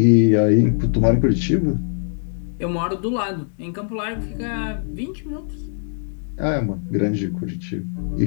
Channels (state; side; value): silent; right; digital silence